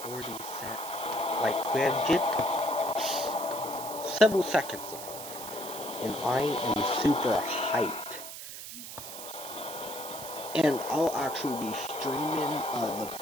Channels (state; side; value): noise; right; hiss, 10 dB below the sound